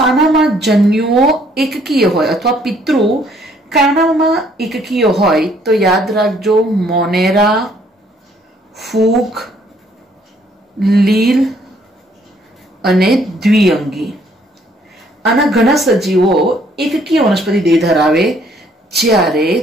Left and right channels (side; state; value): both; normal; correlation 0.64